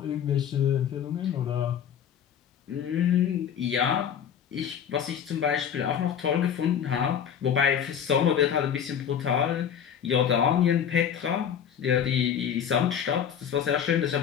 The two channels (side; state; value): right; quieter; 8.5 dB